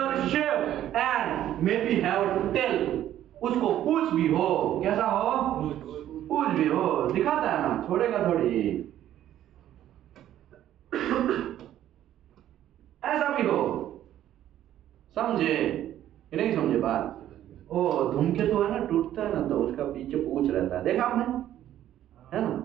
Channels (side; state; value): left; quieter; 12.0 dB